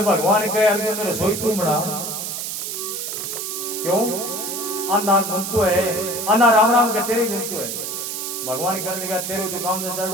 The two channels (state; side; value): noise; right; hiss, 4 dB below the sound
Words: भगवान कहे अर्जुन ने रसोई तू बना क्यों अन्ना गुंतु है अन्ना राम राम के तेरे गुंतु है भगवान कहने लगा तेरे तो काम से